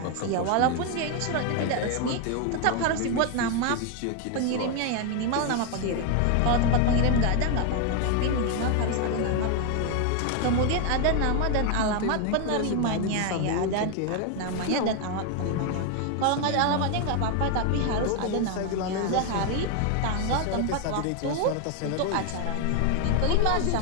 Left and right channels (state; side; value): different; both; correlation 0.01